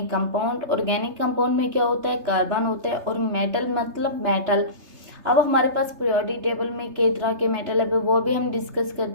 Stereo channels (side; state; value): left; late; 3.3 ms